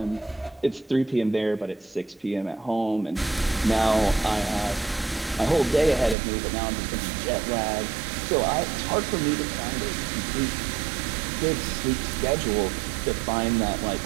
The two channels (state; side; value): drops out; left; at 6.2 s